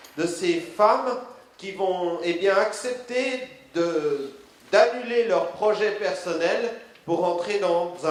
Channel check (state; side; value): identical; both; correlation 1.00